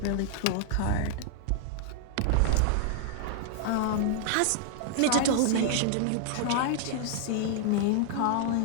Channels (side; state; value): both; different; correlation -0.01